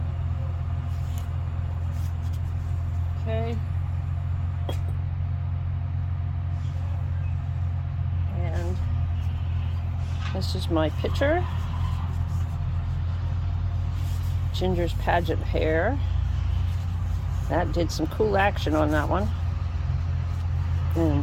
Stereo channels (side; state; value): both; identical; correlation 1.00